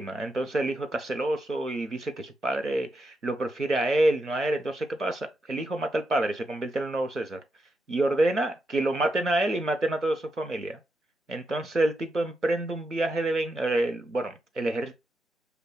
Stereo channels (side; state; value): both; normal; correlation 0.84